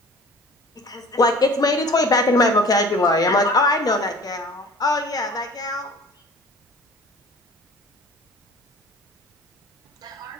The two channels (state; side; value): normal; both; correlation 0.45